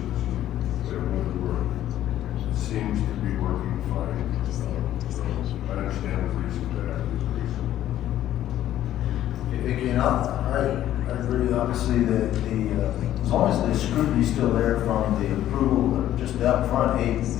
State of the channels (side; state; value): right; quieter; 12.5 dB